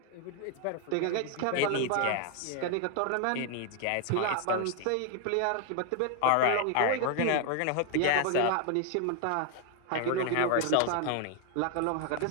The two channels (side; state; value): both; different; correlation 0.01